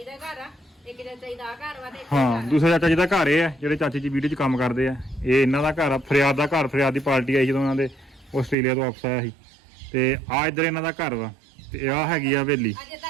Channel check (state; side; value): drops out; left; at 8.6 s